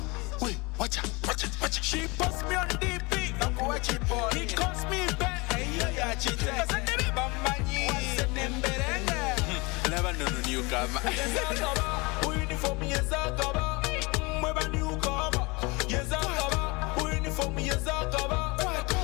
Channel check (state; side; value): quieter; right; 26.2 dB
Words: Wait, watch out. She posts me on DP, I'm watch it for. He calls me back, hey yeah, cheat. Cause I never bambani, never know newcomer. Uniform yes I cover, never newcomer. Yes I cover, uniform yes I cover.